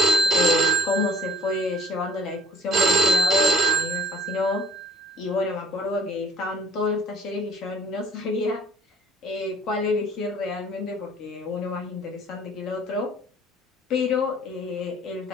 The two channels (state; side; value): normal; both; correlation 0.53